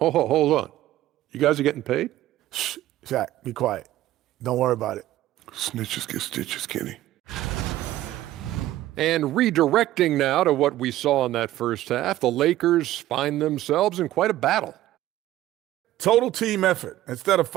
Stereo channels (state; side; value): quieter; left; 14.7 dB